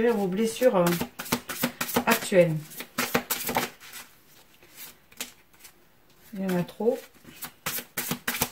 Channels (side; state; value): both; identical; correlation 1.00